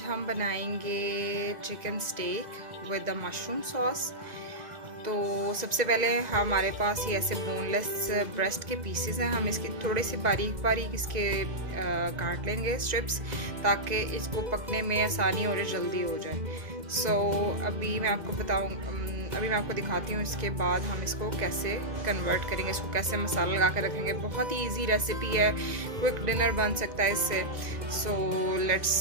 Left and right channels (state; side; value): late; left; 1.9 ms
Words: हम बनाएंगे chicken steak with the mushroom sauce. तो सबसे पहले हमारे पास ये ऐसे बोनलेस ब्रेस्ट के पीसेस हैं। हम इसकी थोड़ी सी बारीक बारीक इसके काट लेंगे स्ट्रिप्स, ताकि इसको पकने में आसानी और जल्दी हो जाए। अभी मैं आपको दिखाती हूँ इसके बाद हम इसको कैसे कन्वर्ट करेंगे, इसको कैसे मसाला लगा कर रखेंगे। बहुत ही इजी रेसिपी है, क्विक डिनर बन सकता है इससे। Let's